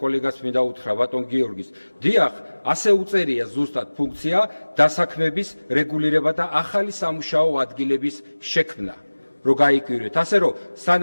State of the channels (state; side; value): inverted; both; correlation -1.00